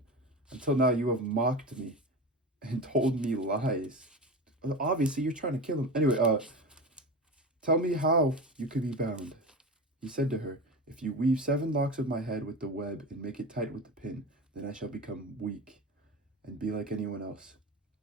"Until now you have mocked me and told me lies. Obviously, you're trying to kill him. Anyway, tell me how you could be bound." He said to her, "If you weave 7 locks of my head with the web and make it tight with the pin, then I shall become weak and be like anyone else."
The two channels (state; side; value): normal; both; correlation 0.26